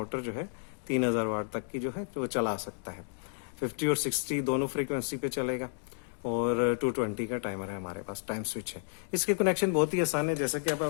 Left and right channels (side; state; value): right; silent; digital silence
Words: जो है 3000 वाट तक की जो है वो चला सकता है। 50 और 60 दोनों फ्रीक्वेंसी पे चलेगा और 220 का टाइमर है हमारे पास, टाइम स्विच है। इसके कनेक्शन बहुत ही आसान है। जैसे कि